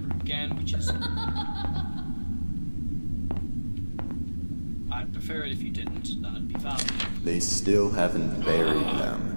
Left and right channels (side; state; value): both; inverted; correlation -1.00